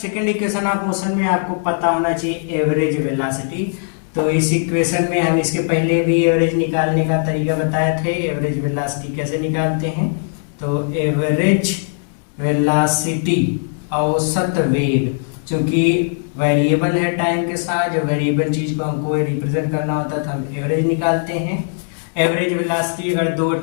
equation of motion में आपको पता होना चाहिए एवरेज वेलोसिटी। तो इस इक्वेशन में हम इसके पहले भी एवरेज निकालने का तरीका बताए थे। एवरेज वेलोसिटी कैसे निकालते हैं, तो एवरेज वेलोसिटी औसत वेग, चूंकि वेरिएबल है टाइम के साथ, जो वेरिएबल चीज को हमको रिप्रेजेंट करना होता था, हम एवरेज निकालते हैं। एवरेज वेलोसिटी अगर दो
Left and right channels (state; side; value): silent; right; digital silence